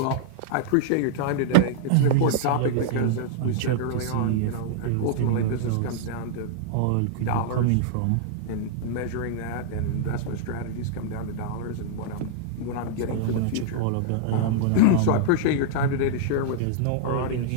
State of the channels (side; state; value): both; different; correlation -0.01